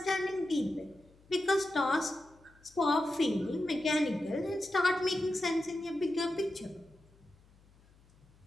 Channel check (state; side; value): noise; left; hum, 29 dB below the sound